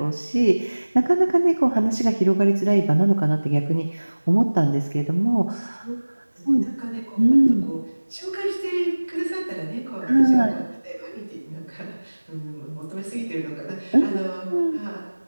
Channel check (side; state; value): both; inverted; correlation -1.00